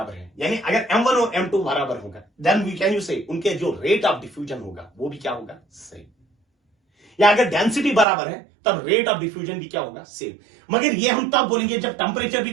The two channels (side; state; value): left; drops out; at 8.1 s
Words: है, यानी अगर M1 और M2 बराबर होगा देन वी कैन यू से उनके जो रेट ऑफ डिफ्यूजन होगा वो भी क्या होगा, सेम। या अगर डेंसिटी बराबर है तब रेट ऑफ डिफ्यूजन भी क्या होगा, सेम। मगर ये हम तब बोलेंगे जब टेंपरेचर भी